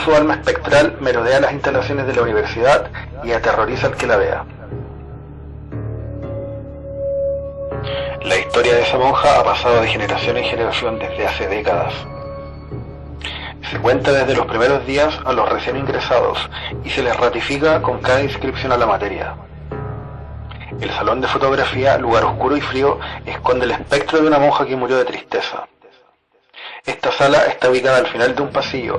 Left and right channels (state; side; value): identical; both; correlation 1.00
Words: alma espectral merodea las instalaciones de la universidad y aterroriza al que la vea. La historia de esa monja ha pasado de generación en generación desde hace décadas. Se cuenta desde los primeros días a los recién ingresados y se les ratifica con cada inscripción a la materia. El salón de fotografía, lugar oscuro y frío, esconde el espectro de una monja que murió de tristeza. Esta sala está ubicada al final de un